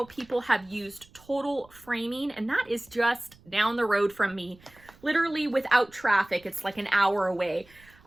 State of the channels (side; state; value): right; noise; rumble, 27 dB below the sound